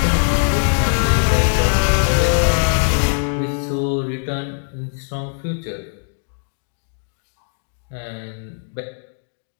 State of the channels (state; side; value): silent; right; 65 dB below the other